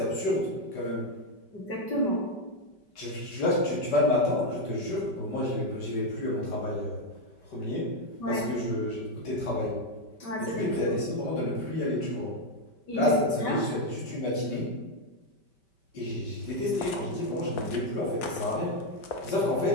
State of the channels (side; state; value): right; late; 5.2 ms